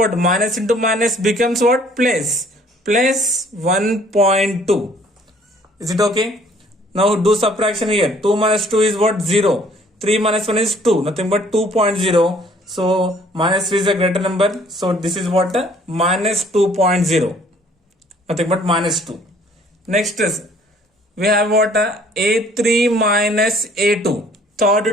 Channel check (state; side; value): normal; both; correlation 0.58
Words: Minus into minus becomes what? Plus 1.2. Is it okay? Now do subtraction here. 2 minus 2 is what? 0. 3 minus 1 is 2. Nothing but 2.0. So minus 3 is a greater number. So this is what? Minus 2.0. Nothing but minus 2. Next is we have what? A3 minus A2.